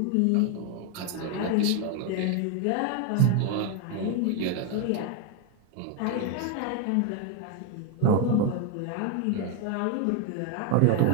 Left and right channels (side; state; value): both; different; correlation 0.01